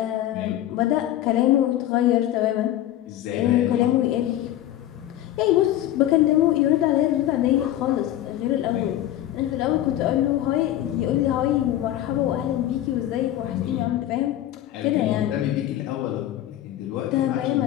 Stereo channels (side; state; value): right; quieter; 13.0 dB